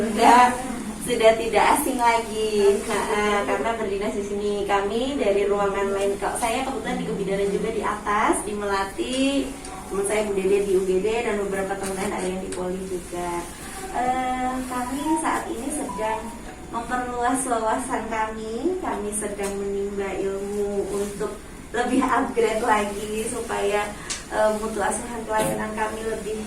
sudah tidak asing lagi, karena berdinas di sini. Kami dari ruangan lain, saya kebetulan di kebidanan juga di atas, di Melati. Teman saya Bu Dede di UGD dan beberapa teman lain ada yang di Poli juga. Kami saat ini sedang memperluas wawasan kami sedang menimba ilmu untuk lebih upgrade lagi supaya mutu asuhan pelayanan kami lebih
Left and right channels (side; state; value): both; identical; correlation 1.00